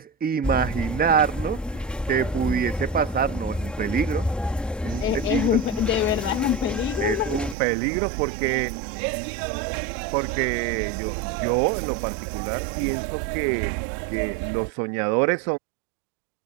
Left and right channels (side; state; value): left; drops out; at 7.6 s